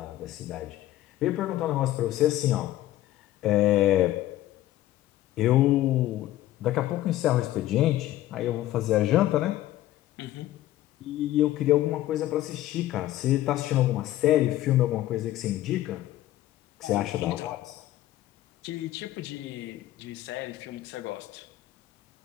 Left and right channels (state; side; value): quieter; right; 14.7 dB